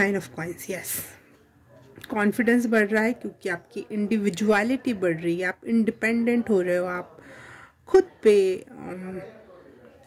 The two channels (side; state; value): both; identical; correlation 1.00